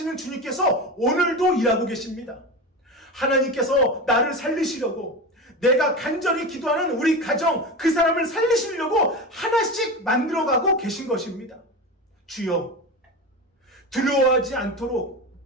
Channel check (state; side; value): normal; both; correlation 0.24